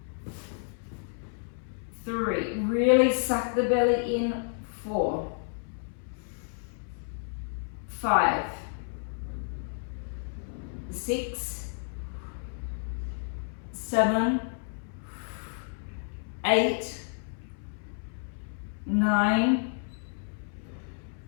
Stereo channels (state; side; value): silent; right; 57 dB below the other